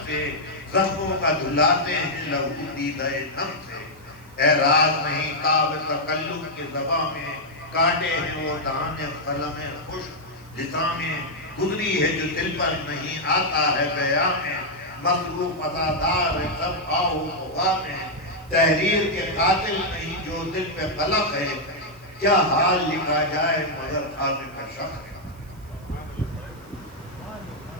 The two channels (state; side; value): noise; right; hiss, 28 dB below the sound